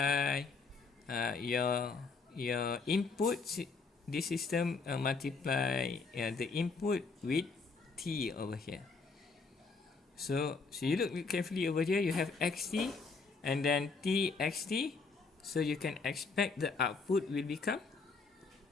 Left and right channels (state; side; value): quieter; right; 4.5 dB